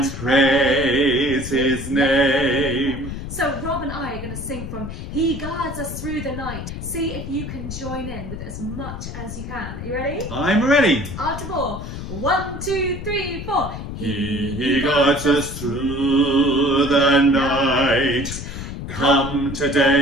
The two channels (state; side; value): noise; left; rumble, 8 dB below the sound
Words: praise his name. So Rob and I are going to sing from He Guards Us Through the Night. See if you can join in with as much as you can. Are you ready? I'm ready. After 4. 1, 2, 3, 4. He guards us through the night. Come